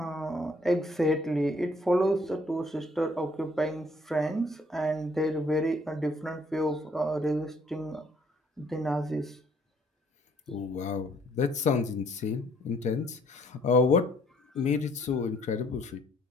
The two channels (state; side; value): normal; both; correlation 0.64